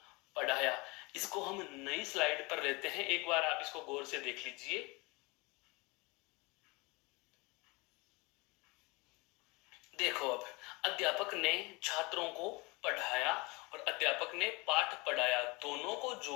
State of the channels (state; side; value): quieter; right; 25.9 dB